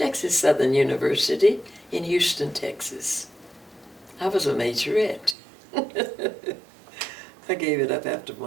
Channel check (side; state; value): left; drops out; at 5.4 s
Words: Southern University in Houston, Texas. I was a majorette. I gave it up after